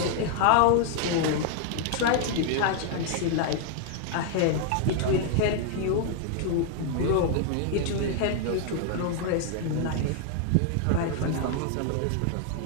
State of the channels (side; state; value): both; different; correlation 0.00